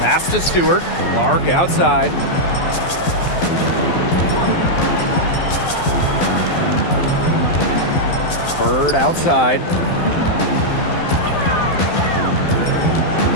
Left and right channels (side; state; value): right; late; 12 ms